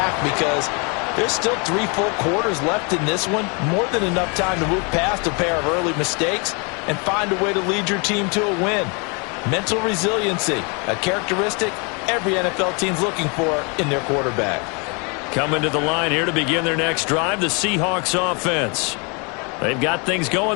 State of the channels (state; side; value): quieter; right; 33.1 dB